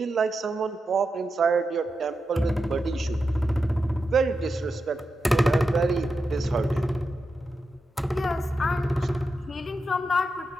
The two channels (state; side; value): normal; both; correlation 0.89